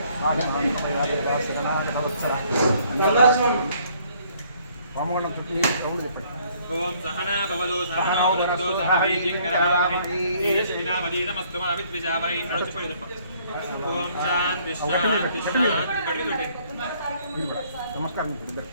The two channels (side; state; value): both; inverted; correlation -0.63